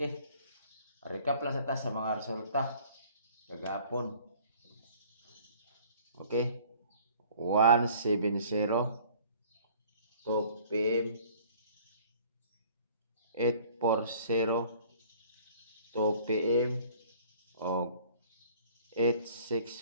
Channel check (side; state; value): both; inverted; correlation -0.53